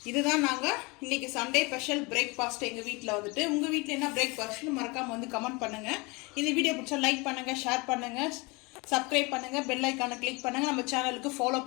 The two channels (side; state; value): right; quieter; 26.7 dB